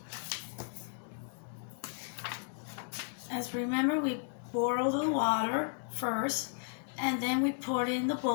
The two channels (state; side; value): silent; right; digital silence